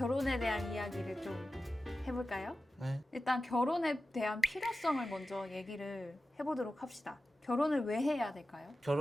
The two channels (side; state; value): both; normal; correlation 0.94